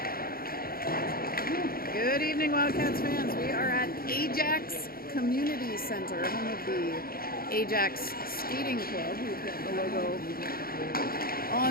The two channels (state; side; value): late; right; 0.43 ms